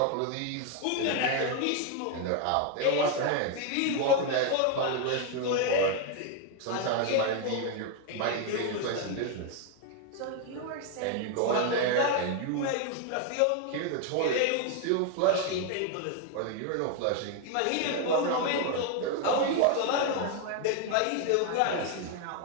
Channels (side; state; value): both; different; correlation 0.01